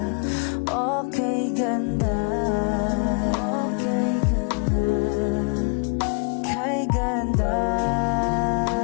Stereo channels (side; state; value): right; quieter; 38.7 dB